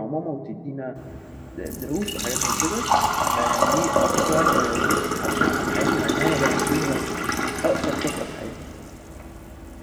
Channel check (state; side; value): identical; both; correlation 1.00